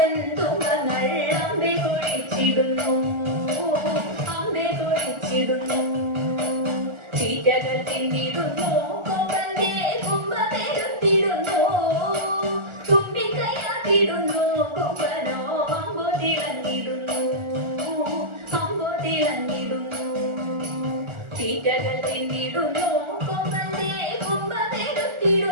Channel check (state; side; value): late; left; 1.4 ms